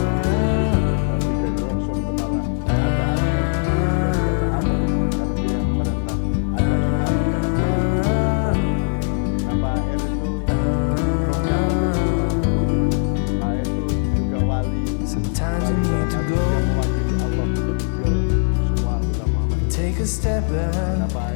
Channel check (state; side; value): silent; right; 65 dB below the other